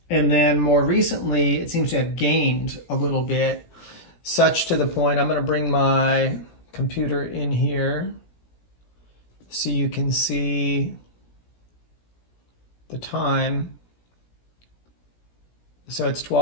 And then more recently, it seems to have gained a little bit, such to the point, I'm going to bring my computer in here so you can see the time. So it's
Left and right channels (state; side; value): late; right; 17 ms